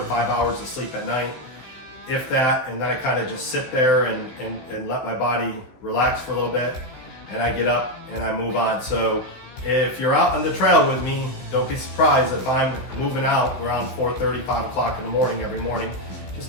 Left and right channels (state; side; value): late; right; 16 ms